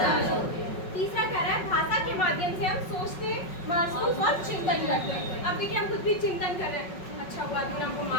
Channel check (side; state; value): right; late; 5.4 ms